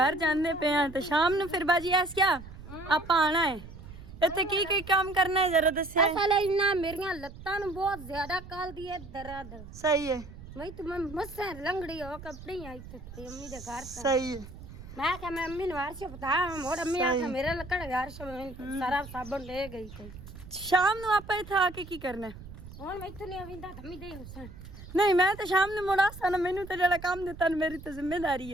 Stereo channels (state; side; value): noise; right; rumble, 15 dB below the sound